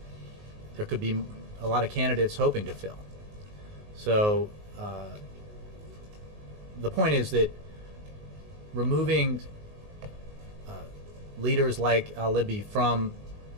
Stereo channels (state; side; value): late; left; 19 ms